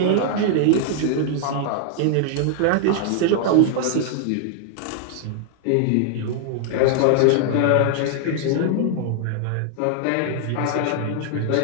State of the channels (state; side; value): different; both; correlation 0.00